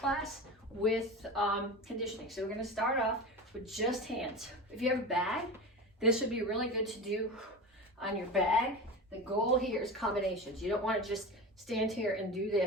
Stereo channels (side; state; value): both; normal; correlation 0.28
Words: with conditioning. So we're gonna start off with just hands. If you have a bag, this would be really good to do on your bag. The goal here is combinations. You don't want to just stand here and do